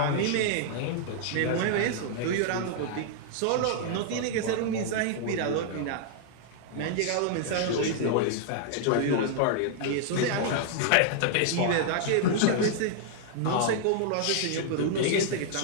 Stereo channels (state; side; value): different; both; correlation -0.01